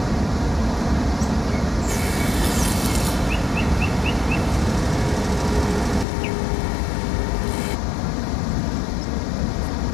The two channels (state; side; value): drops out; right; at 6.1 s